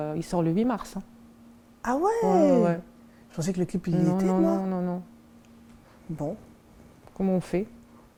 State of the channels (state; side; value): identical; both; correlation 1.00